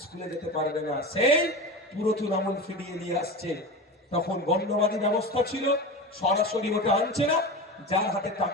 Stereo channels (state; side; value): normal; both; correlation 0.27